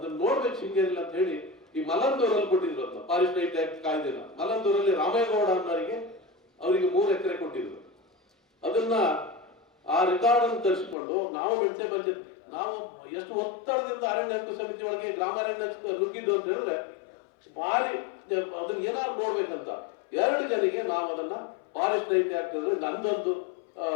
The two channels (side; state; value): right; drops out; at 11.0 s